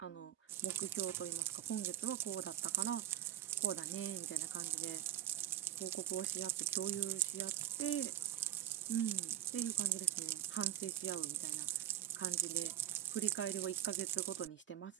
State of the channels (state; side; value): quieter; left; 11.4 dB